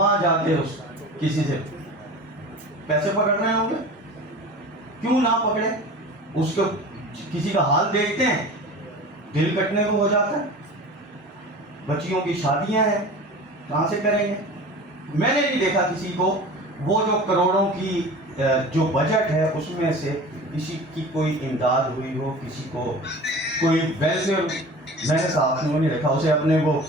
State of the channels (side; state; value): both; normal; correlation 0.37